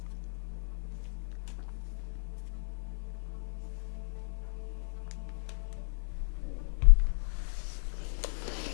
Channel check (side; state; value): right; silent; 55 dB below the other